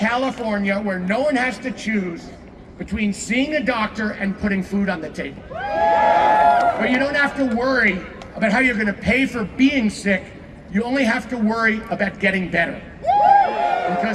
where no one has to choose between seeing a doctor and putting food on the table. Where you don't have to worry about how you're going to pay for being sick. You only have to worry about getting better.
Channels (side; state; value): both; identical; correlation 1.00